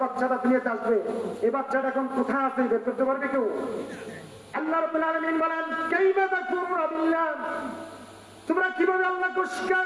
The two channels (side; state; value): both; identical; correlation 1.00